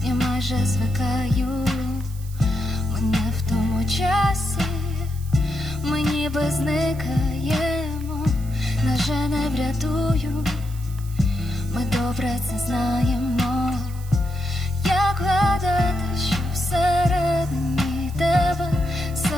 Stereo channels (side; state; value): right; noise; hiss, 20 dB below the sound